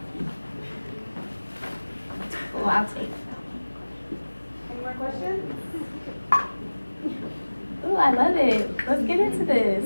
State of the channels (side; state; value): both; inverted; correlation -1.00